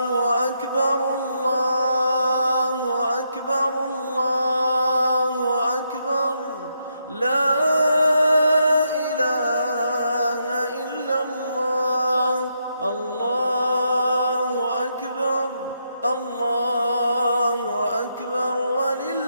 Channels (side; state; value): both; inverted; correlation -0.80